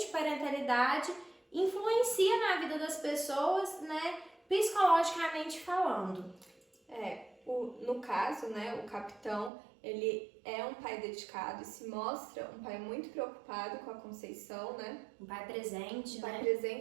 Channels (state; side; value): drops out; left; at 9.5 s